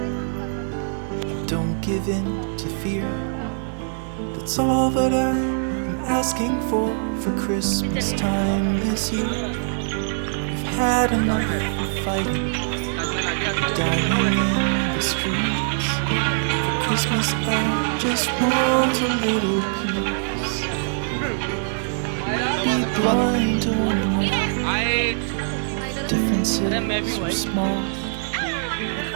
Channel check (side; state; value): left; silent; 58 dB below the other